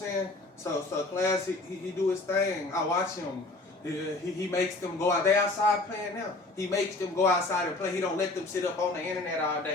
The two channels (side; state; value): right; quieter; 3.0 dB